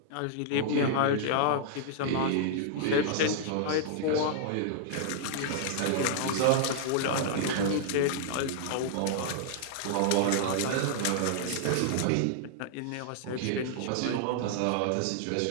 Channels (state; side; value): different; both; correlation -0.01